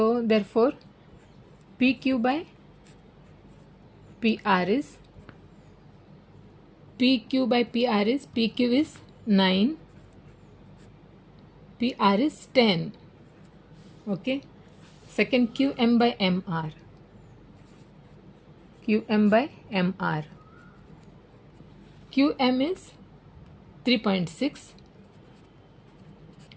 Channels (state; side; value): identical; both; correlation 1.00